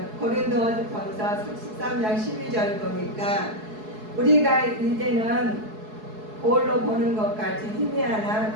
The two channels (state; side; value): late; left; 4.7 ms